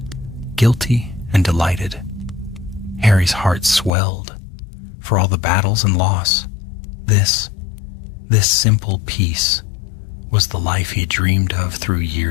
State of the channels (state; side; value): drops out; right; at 3.9 s